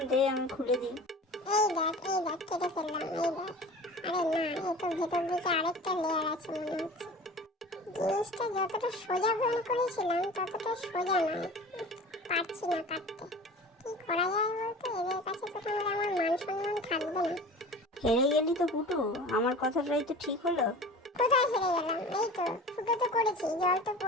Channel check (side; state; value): both; normal; correlation 0.38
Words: দে আমি খুলে দিই। এই দেখ কেটে ফেললাম, এই দেখ। আরে না, এই তো ভেতর দিকে আরেকটা লেয়ার আছে মনে হচ্ছে। জিনিসটা যতটা সোজা মনে করেছিলাম ততটা সোজা নয়, পারছি না কাটতে। কি করা যায় বলতো? এদের কাছে তো তাহলে আমার মান সম্মান থাকবে না। হেরে গেলি তো পুটু, আমার কথাটাই তো ঠিক হলো। কোথায় হেরে গেলাম? এই তো ফুটো তো করেছি, জল তো